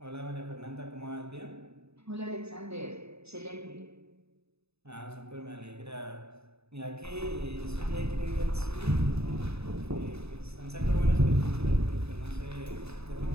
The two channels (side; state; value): left; late; 0.79 ms